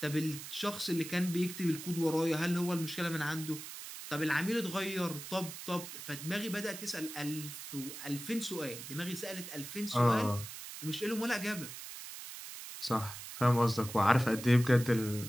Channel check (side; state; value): right; noise; hiss, 10 dB below the sound